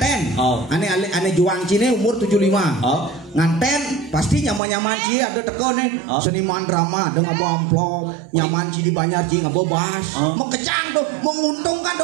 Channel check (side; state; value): left; drops out; at 4.6 s